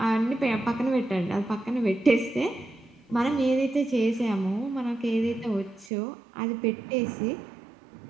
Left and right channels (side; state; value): left; drops out; at 5.9 s